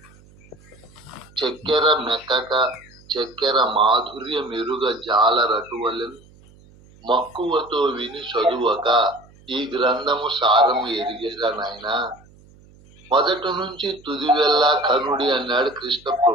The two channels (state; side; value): noise; right; hum, 26 dB below the sound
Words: చక్కెర మెక్కక చక్కెర మాధుర్య మెరుగ జాలరటువలెను మక్కువతో విని చదువక ఈ గ్రంథము సారము ఎరిగేగా నాయనా. మొదటి నుంచి తుది వెళ్ళా కనుడి అన్నాడు కృష్ణ